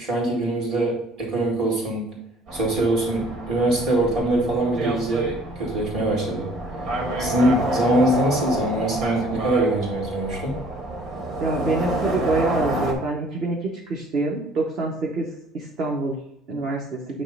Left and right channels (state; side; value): normal; both; correlation 0.56